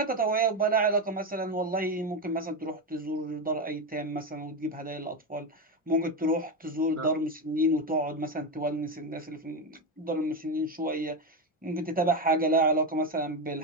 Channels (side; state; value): both; normal; correlation 0.13